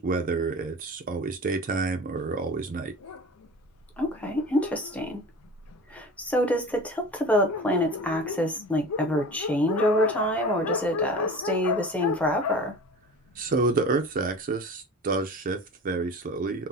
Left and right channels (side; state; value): both; normal; correlation 0.36